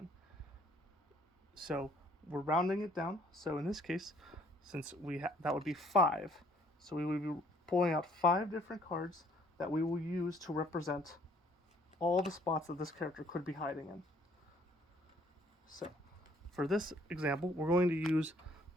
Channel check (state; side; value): normal; both; correlation 0.62